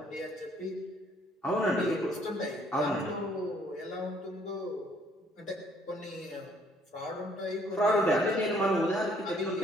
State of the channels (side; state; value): both; normal; correlation 0.64